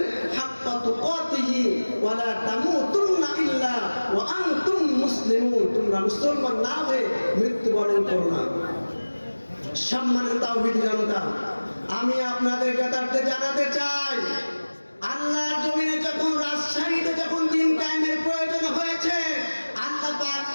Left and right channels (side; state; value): both; inverted; correlation -1.00